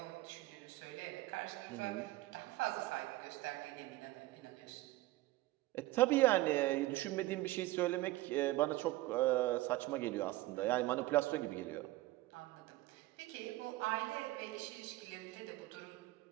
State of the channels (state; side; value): quieter; left; 18.2 dB